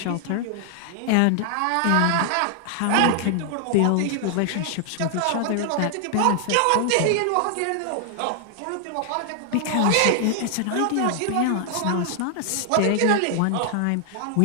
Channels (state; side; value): different; both; correlation 0.00